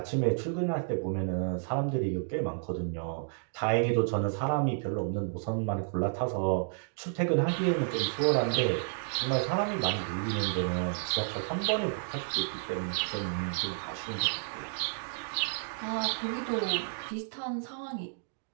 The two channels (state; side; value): silent; left; digital silence